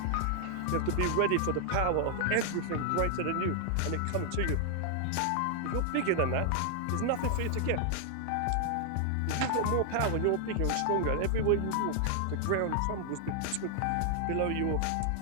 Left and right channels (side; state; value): both; different; correlation 0.00